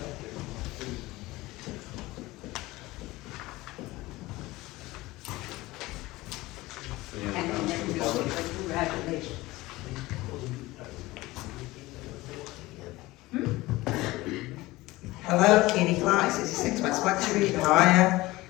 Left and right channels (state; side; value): quieter; right; 19.5 dB